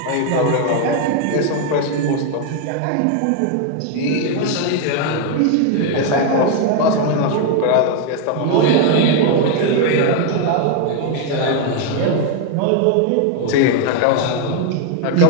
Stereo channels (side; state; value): both; different; correlation 0.00